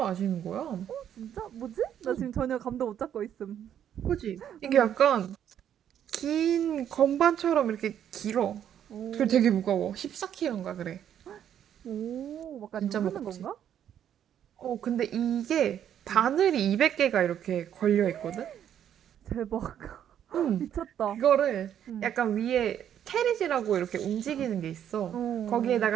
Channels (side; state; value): left; quieter; 9.8 dB